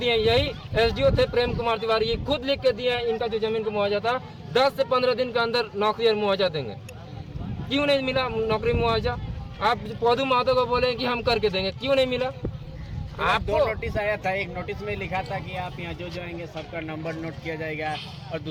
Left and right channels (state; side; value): identical; both; correlation 1.00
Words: यही एसडीओ थे प्रेम कुमार तिवारी, ये खुद लिख के दिए इनका जो जमीन का मुआवजा था 10 से 15 दिन के अंदर नौकरी और मुआवजा देंगे। क्यों नहीं मिला नौकरी मुआवजा? आप पौधु महतो को बोले कि हम करके देंगे, क्यों नहीं मिला? आपको 2 नोटिस आया था। एक नोटिस में लिखा था कि आप यहाँ जो आएंगे सबका नंबर नोट किया जाएगा, और